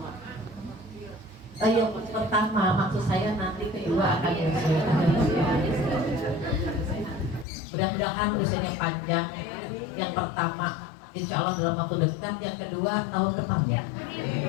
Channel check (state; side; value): drops out; right; at 7.5 s